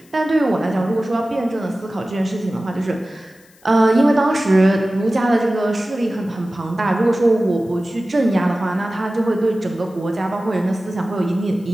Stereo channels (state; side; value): noise; left; hiss, 29 dB below the sound